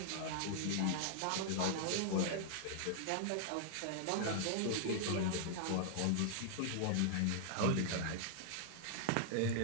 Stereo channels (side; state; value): both; different; correlation -0.01